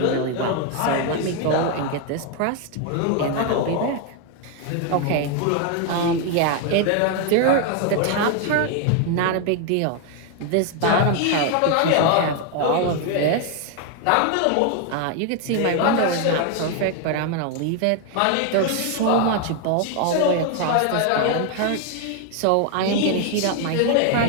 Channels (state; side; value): different; both; correlation 0.01